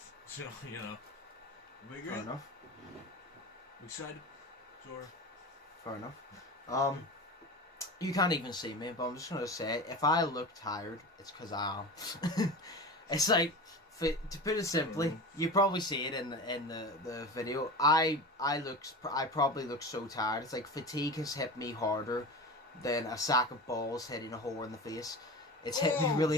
So, you know, we good? Fair enough. We excited? Sure. Fair enough. You can't even see me, but I'm just gonna say, if I look tired, it's because I am. It's like, to put it simply, you probably see it in the video. I probably look so tired. It's like fatigue has hit me harder than a sack of balls hitting a whore in the face. It's hit me really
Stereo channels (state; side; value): normal; both; correlation 0.30